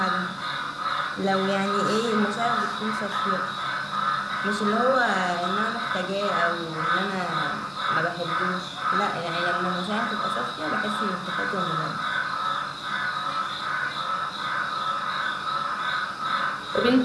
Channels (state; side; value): identical; both; correlation 1.00